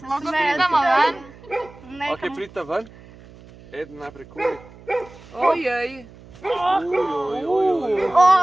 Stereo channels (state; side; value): noise; right; hum, 21 dB below the sound